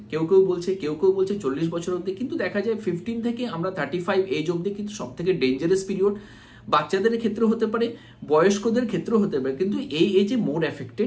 কেউ কেউ বলছে 40 বছর অবধি, কিন্তু দেখা যায় 15 থেকে আমরা 35 এজ অবধি কিন্তু সব থেকে ডেঞ্জারাস পিরিয়ড। বাচ্চাদের ক্ষেত্রে হতে পারে, বয়স্কদের ক্ষেত্রেও হতে পারে, কিন্তু এই এজে মোর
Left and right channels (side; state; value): both; identical; correlation 1.00